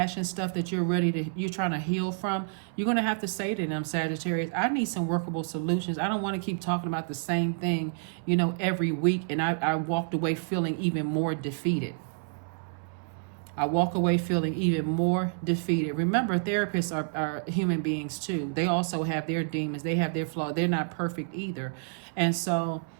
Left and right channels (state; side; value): silent; left; 59 dB below the other